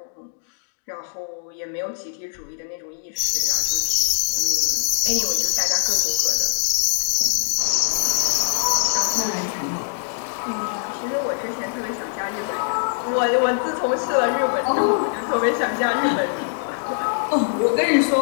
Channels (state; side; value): silent; right; digital silence